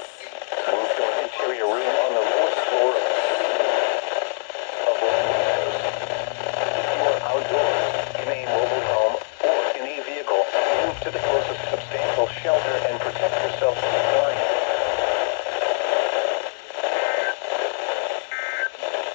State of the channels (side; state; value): right; silent; 63 dB below the other